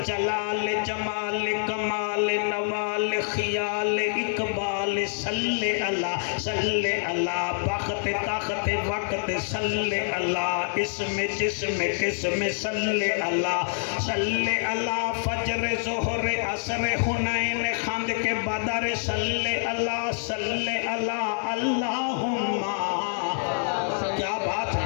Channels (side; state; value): right; silent; digital silence